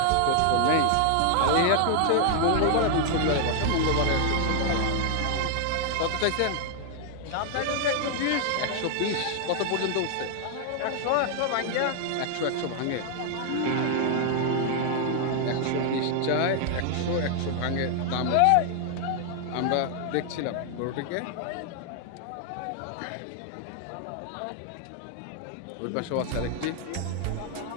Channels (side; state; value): both; different; correlation 0.00